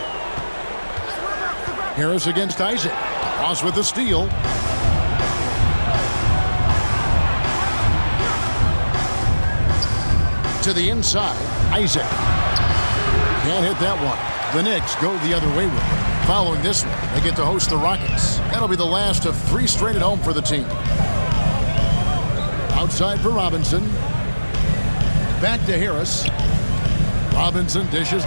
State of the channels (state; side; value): inverted; both; correlation -1.00